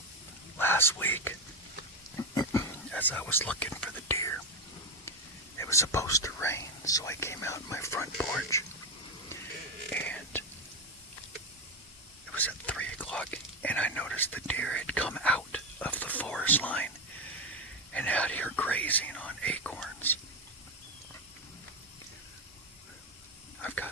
last week, as I was looking for the deer, it was supposed to rain, so I came out on my front porch, and it was at 3 o'clock, and I noticed the deer had come out of the forest line and out here grazing on acorns. I've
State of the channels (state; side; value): normal; both; correlation 0.11